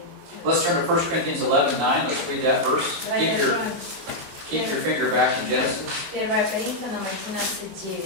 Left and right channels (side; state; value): left; late; 22 ms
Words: Let's turn to 1 Corinthians 11:9. Let's read that verse. Давайте откроем Keep your finger back in Genesis. 1 Коринфянам